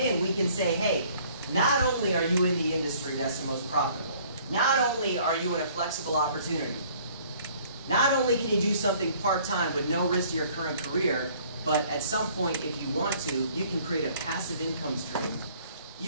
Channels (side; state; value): both; inverted; correlation -0.57